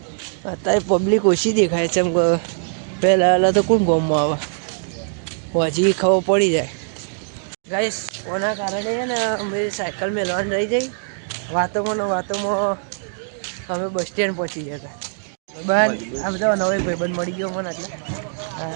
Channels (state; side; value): silent; left; 64 dB below the other